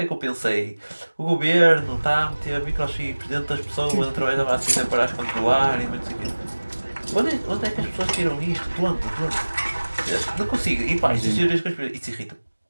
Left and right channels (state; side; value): inverted; both; correlation -1.00